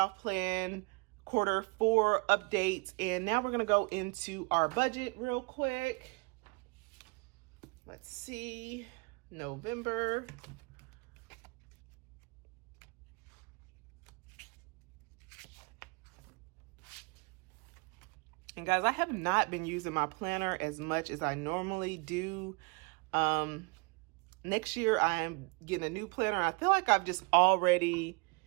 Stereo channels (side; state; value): left; quieter; 30.1 dB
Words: plan Q4 updates. And now we're going to go into our budget real quick. Let's see, November. And guys, I have not been using my planner as much as I normally do. Next year, I am getting a new planner. I feel like I've just already